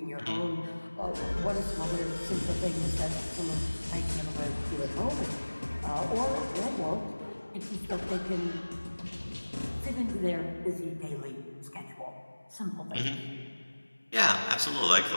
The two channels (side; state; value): both; inverted; correlation -1.00